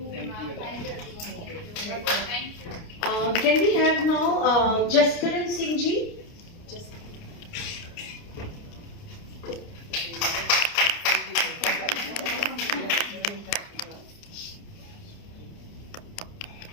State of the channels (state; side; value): late; right; 29 ms